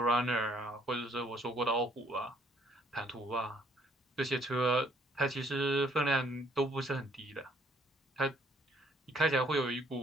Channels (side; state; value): both; normal; correlation 0.65